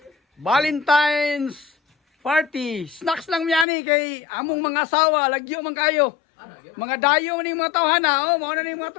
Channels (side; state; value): right; drops out; at 3.7 s